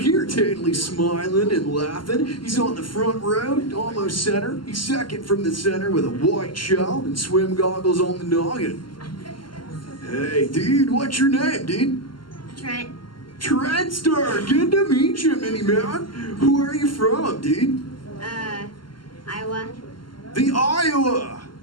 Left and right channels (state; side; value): late; right; 0.72 ms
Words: totally smiling and laughing. He's on the front row, almost center. He's second from the center with a white shell and swim goggles on the noggin. Hey, dude, what's your name, dude? Trent. Trentster, good to meet you, mini man. Who are you from, dude? Iowa. The Iowa.